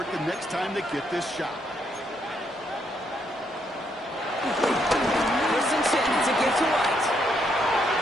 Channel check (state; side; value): normal; both; correlation 0.75